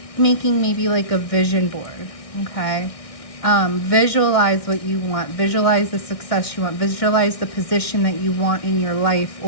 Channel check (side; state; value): right; late; 1.6 ms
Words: making maybe like a vision board. Okay. Visualize what you want, visualize the success you want, visualize the position that you want in your life,